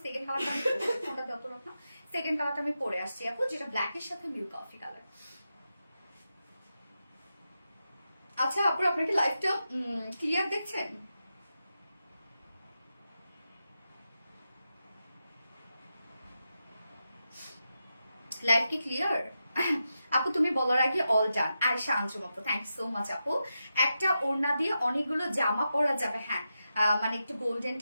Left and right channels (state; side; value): inverted; both; correlation -0.89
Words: সেকেন্ড কালারটা আমি ফোনটা যত রকম সেকেন্ড কালারটা আমি পরে আসছি আপু, যেটা ব্ল্যাকের সাথে মিল্ক কফি কালার। আচ্ছা আপু, আপনার কি লাইভটা ক্লিয়ার দেখছেন? লাইভ কি ক্লিয়ার? আপু তুমি বলার আগে অল ডান। আয়েশা আনজুম আপু, থ্যাংক ইউ সো মাচ আপু। একটা ওড়না দিয়ে অনেকগুলো জামা পরা যাবে, হ্যাঁ মানে একটু গোল্ডেন